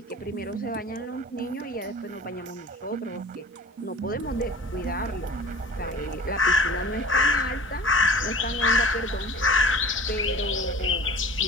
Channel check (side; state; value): both; normal; correlation 0.42